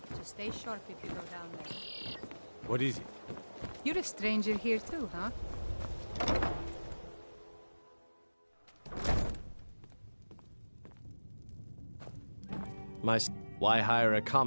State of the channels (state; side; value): inverted; both; correlation -1.00